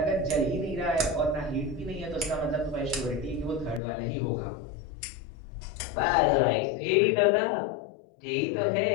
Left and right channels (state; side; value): drops out; right; at 3.8 s